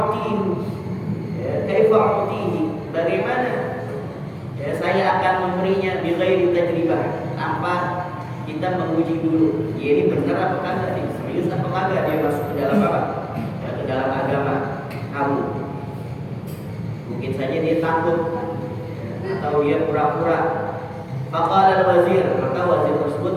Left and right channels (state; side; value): identical; both; correlation 1.00